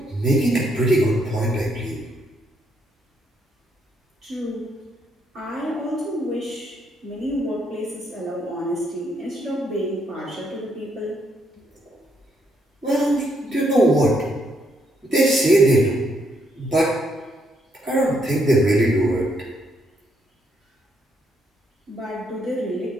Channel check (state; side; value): normal; both; correlation 0.74